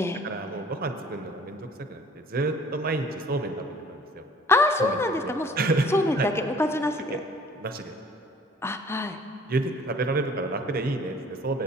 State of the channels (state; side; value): normal; both; correlation 0.52